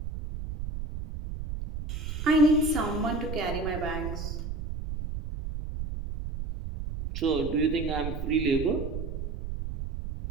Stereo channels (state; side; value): noise; right; rumble, 6 dB below the sound